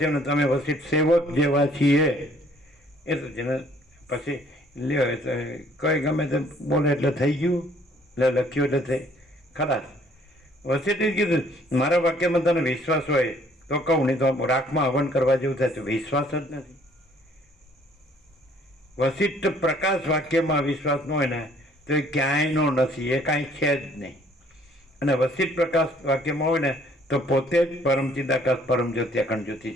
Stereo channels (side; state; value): both; normal; correlation 0.60